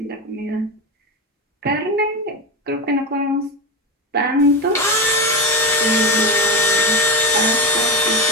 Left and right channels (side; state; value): both; normal; correlation 0.16